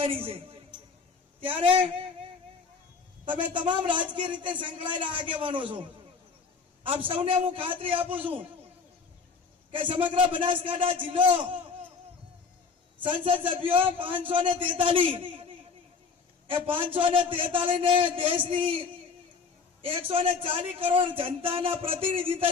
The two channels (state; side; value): quieter; right; 5.2 dB